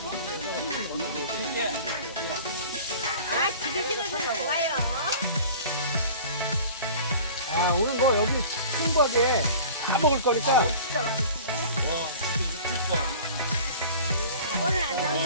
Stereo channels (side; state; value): both; inverted; correlation -0.42